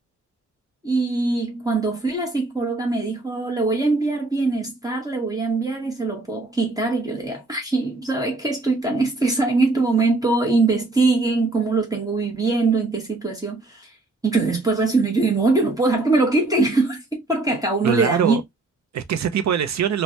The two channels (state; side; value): quieter; left; 3.2 dB